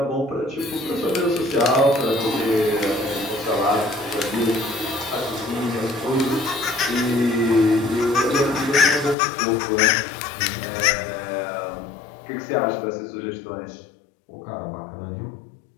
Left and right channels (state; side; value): drops out; right; at 9.2 s